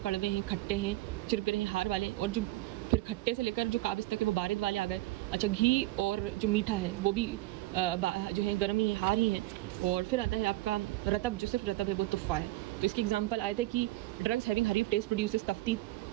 हैं, खट्टे हैं, चिरपिरे हैं, हार वाले, और जो फिर खट्टे से लेकर जो काबिज़ तक है वो बारिद वाले आ गए। अच्छा, घी और जो मीठा है वो भी जो है गर्मी है, हार ही है। और फिर आता है आपका रतब, जो सिर्फ रतब है वो तुफ़ा है। तो इसके एग्जांपल आए थे कि ड्रग्स हैविंग हरीफ टेस्ट प्रोड्यूसेस तफ्तीत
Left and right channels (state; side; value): quieter; left; 17.9 dB